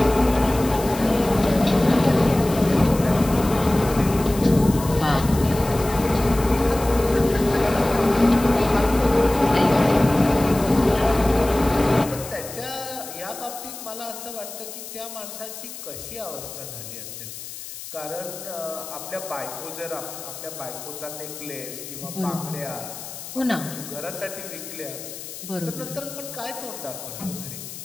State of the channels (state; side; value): noise; left; hiss, 12 dB below the sound